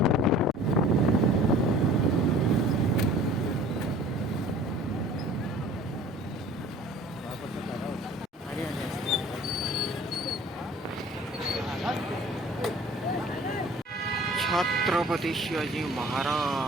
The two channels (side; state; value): both; normal; correlation 0.48